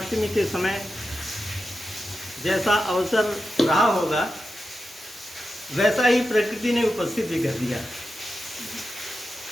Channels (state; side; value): normal; both; correlation 0.90